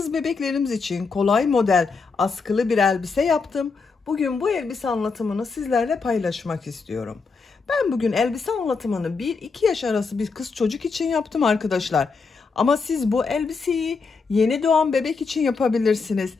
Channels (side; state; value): right; quieter; 4.7 dB